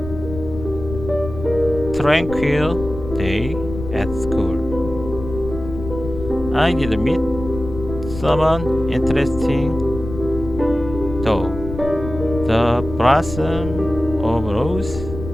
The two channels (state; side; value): noise; left; rumble, 9 dB below the sound